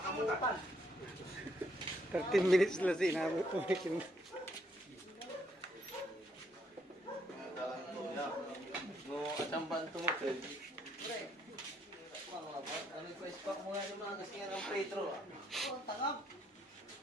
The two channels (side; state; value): both; normal; correlation 0.71